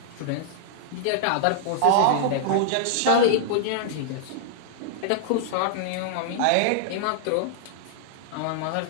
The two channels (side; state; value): both; different; correlation -0.01